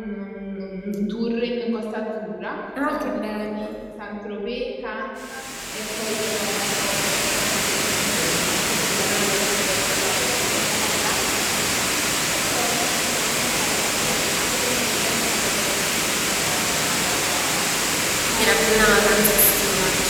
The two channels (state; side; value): identical; both; correlation 1.00